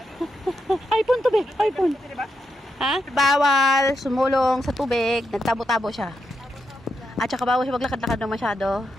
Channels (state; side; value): normal; both; correlation 0.83